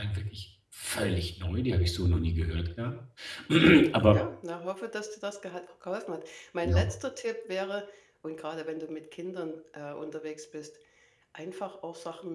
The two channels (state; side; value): identical; both; correlation 1.00